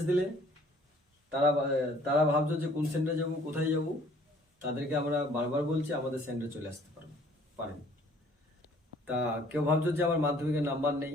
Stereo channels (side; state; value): both; normal; correlation 0.57